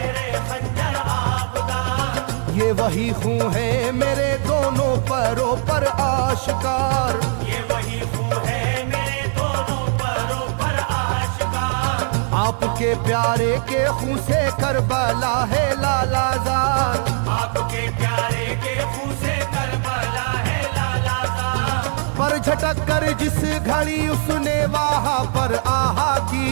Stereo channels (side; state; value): left; silent; 65 dB below the other